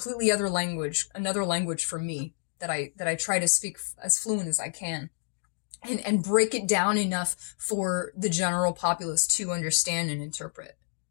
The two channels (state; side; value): silent; right; digital silence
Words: other language, another language for me that I try to speak as fluent as I can and break it down enough for the general populace to understand and interpret.